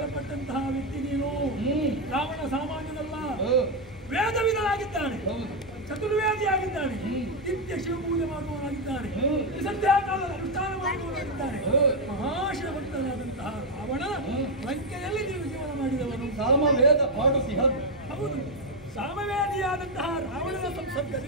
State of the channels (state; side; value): normal; both; correlation 0.04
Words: ವ್ಯಕ್ತಿ ನೀನು. ರಾವಣ ಸಾಮಾನ್ಯನಲ್ಲ, ವೇದವಿದನಾಗಿದ್ದಾನೆ, ಚತುರ್ವೇದಿಯಾಗಿದ್ದಾನೆ, ನಿತ್ಯ ಶಿವಪೂಜೆ ಮಾಡುವವನಾಗಿದ್ದಾನೆ, ಸಂಧ್ಯಾಕಾಲದ ಅನುಷ್ಠಾನ ಮಾಡುವವನಾಗಿದ್ದಾನೆ. ಮಹಾಶಿವಭಕ್ತನಾದಂತಹ ರಾವಣ ಲಂಕೆಯಲ್ಲಿ ನೀವು ಜೀವನ ಮಾಡಿದವನು. ಸಾಮವೇದ ಪಾಡುಸಿ. ಹೌದು, ಸಾಮವೇದಿಯಾದಂತಹ ರಾವಣನ